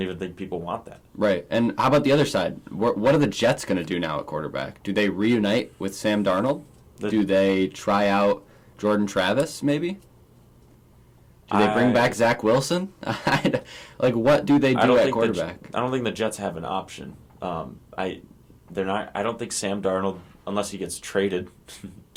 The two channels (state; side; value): identical; both; correlation 1.00